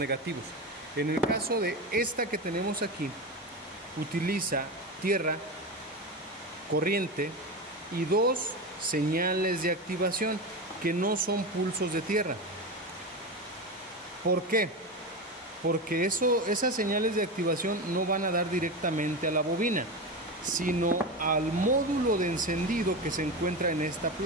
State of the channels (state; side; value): normal; both; correlation 0.20